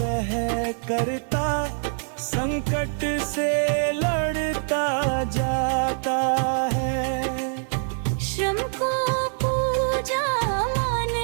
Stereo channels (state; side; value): silent; left; digital silence